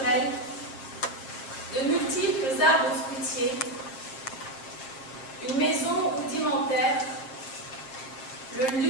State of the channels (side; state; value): right; late; 7.4 ms